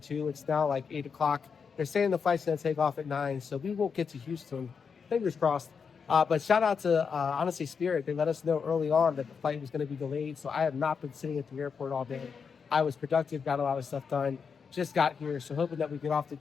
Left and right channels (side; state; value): right; quieter; 6.0 dB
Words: It's now like 8 o'clock. They're saying the flight's going to take off at 9, so we won't get to Houston. Fingers crossed. But shout out to honestly Spirit. They let us know early on that the flight was going to be delayed, so I have not been sitting at the airport all day. I was productive, got a lot of stuff done. Just got here, so hoping that we get off the